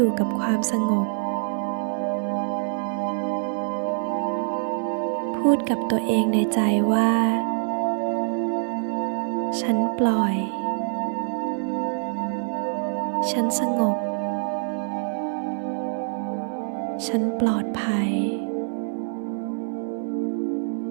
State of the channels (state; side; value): silent; left; 60 dB below the other